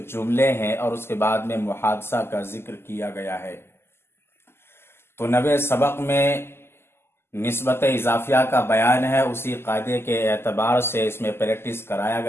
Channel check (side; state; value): right; late; 0.12 ms